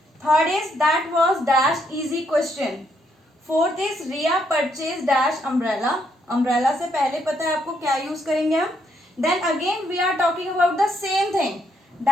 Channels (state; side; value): normal; both; correlation 0.74